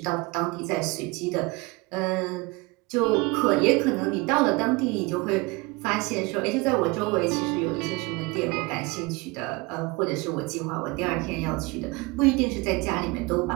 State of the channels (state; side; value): quieter; left; 24.8 dB